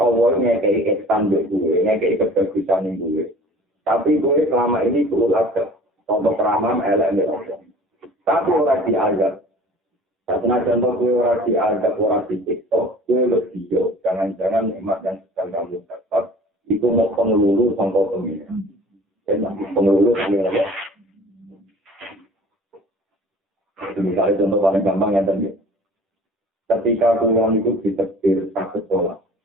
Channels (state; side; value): normal; both; correlation 0.46